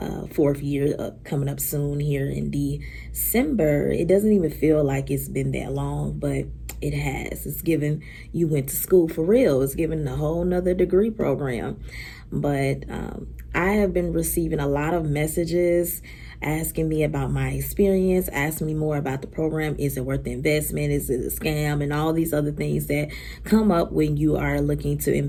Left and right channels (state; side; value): identical; both; correlation 1.00